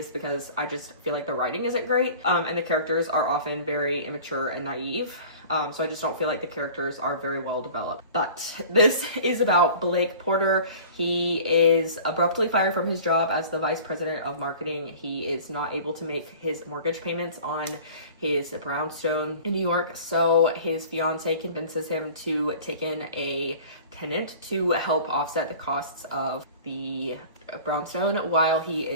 because I just feel like the writing isn't great, and the characters are often very immature and naive. So I just don't feel like the characters are very well developed. But this is about Blake Porter. He is abruptly fired from his job as the vice president of marketing. He is not able to make his mortgage payments on his brownstone in New York, so his fiance convinces him to take in a tenant to help offset the costs of the brownstone while he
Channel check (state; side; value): inverted; both; correlation -0.44